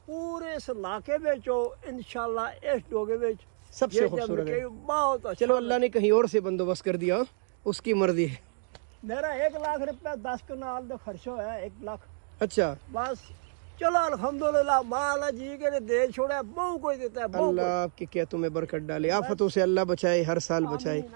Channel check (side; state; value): left; silent; 58 dB below the other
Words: پورے اس علاقے میں انشاءاللہ اس ڈوگے میں سب سے خوبصورت ہے. بہت اچھا. چلو اللہ نے کہیں اور سے بندوبست کر دیا, اس کی مرضی ہے. میرا 1,00,000 روپے 10 کنال کا خرچہ ہوا ہے. 1,00,000. اچھا بس چلو الحمدللہ مالا جی کے دے چھوڑا بہو کوئی دیتا ہے. اللہ آپ کے کیتوں میں برکت ڈالے, آفتوں سے اللہ بچائے, ہر سال بچائے.